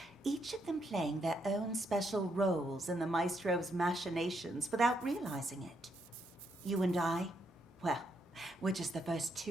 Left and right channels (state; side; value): normal; both; correlation 0.77